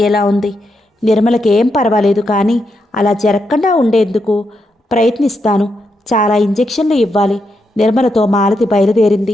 ఉంది. నిర్మలకి ఏం పర్వాలేదు, కానీ అలా జరగకుండా ఉండేందుకు ప్రయత్నిస్తాను. చాలా ఇంజెక్షన్లు ఇవ్వాలి. నిర్మలతో మాలతి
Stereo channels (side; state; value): both; normal; correlation 0.82